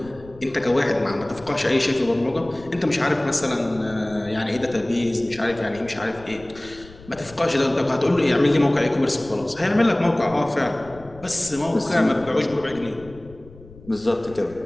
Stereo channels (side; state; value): left; noise; rumble, 21 dB below the sound